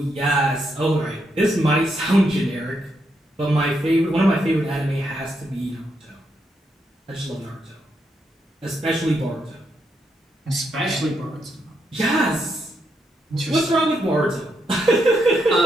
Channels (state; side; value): normal; both; correlation 0.80